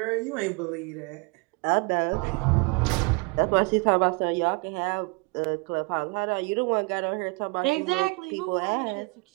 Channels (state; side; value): quieter; left; 28.9 dB